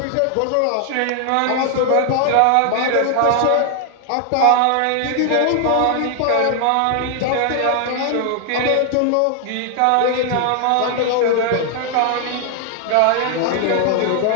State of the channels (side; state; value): both; different; correlation 0.00